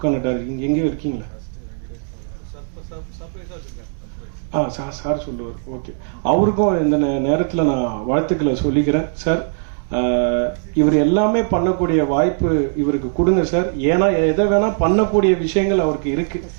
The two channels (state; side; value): silent; left; digital silence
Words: பண்ண டைரக்டர் எங்கேயும் இருக்கீங்களா? சார் சொல்லுவார். ஓகே, அவருக்கும் இந்த நேரத்தில் நான் வாழ்த்துக்களை சொல்லிக்கிறேன். சார், இவர் எல்லாமே பண்ணக்கூடிய வாய்ப்பு இவருக்கு கொடுங்க சார். ஏன்னா எதை வேணா பண்ணக்கூடிய விஷயங்கள் அவருக்கு இருக்கு.